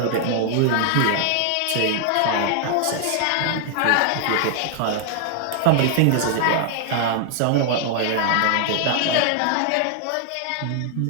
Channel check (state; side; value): different; both; correlation 0.00